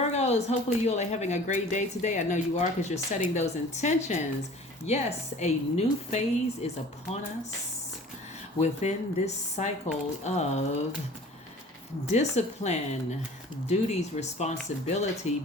hopefully you all are having a great day today. I know you are because you're setting those intentions. Yes, a new phase is upon us within this cycle of discipline, duties, responsibility,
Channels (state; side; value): normal; both; correlation 0.45